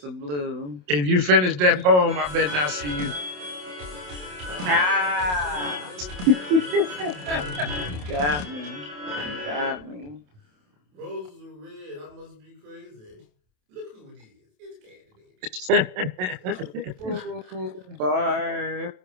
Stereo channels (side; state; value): left; late; 27 ms